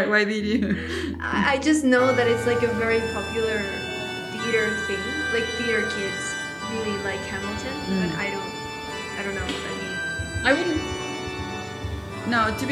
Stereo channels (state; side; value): identical; both; correlation 1.00